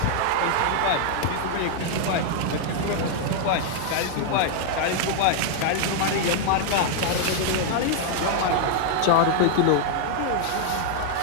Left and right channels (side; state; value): both; different; correlation 0.00